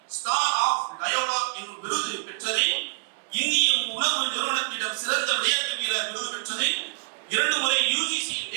ஸ்டார் ஆஃப் டயலாக் என்னும் விருது பெற்றது, இந்திய உணவு நிறுவனத்திடம் சிறந்த விளையாட்டு வீரர் விருது பெற்றது, 2 முறை UGC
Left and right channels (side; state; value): left; silent; 61 dB below the other